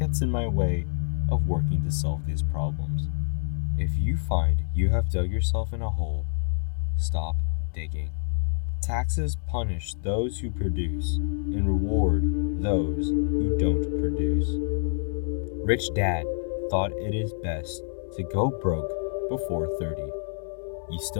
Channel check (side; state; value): right; silent; digital silence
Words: in my way of working to solve these problems." If you find you have dug yourself in a hole, stop digging. Taxes punish those who produce and reward those who don't produce. Rich Dad thought it is best to go broke before 30. You